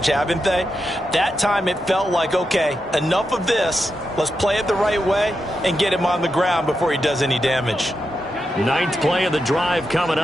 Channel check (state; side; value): normal; both; correlation 0.87